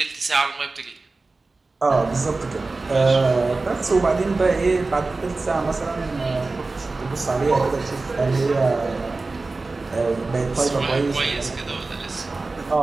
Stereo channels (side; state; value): left; quieter; 3.6 dB